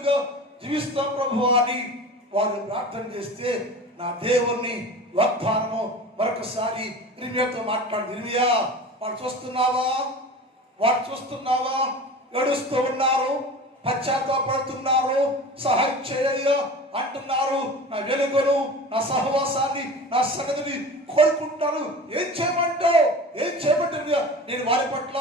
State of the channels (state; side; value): normal; both; correlation 0.35